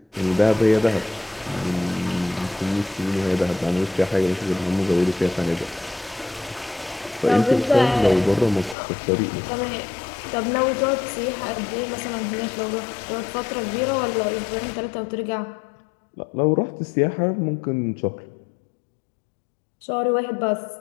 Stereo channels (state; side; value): drops out; right; at 8.8 s